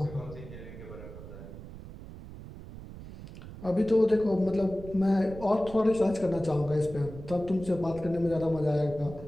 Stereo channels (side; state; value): right; noise; rumble, 14 dB below the sound